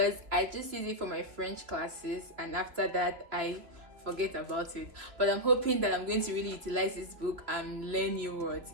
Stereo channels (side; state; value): left; late; 2.9 ms